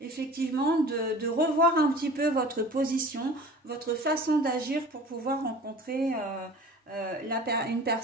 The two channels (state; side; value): normal; both; correlation 0.42